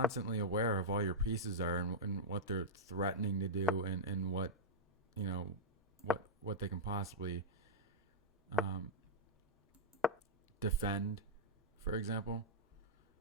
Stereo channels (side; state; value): both; normal; correlation -0.06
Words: aware of all your pieces are and what they're threatening to do and what, you know, what they can possibly defend, for example.